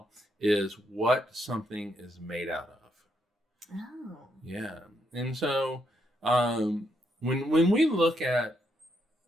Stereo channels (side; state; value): both; normal; correlation 0.77